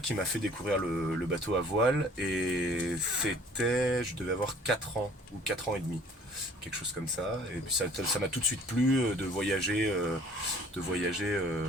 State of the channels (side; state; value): both; normal; correlation 0.53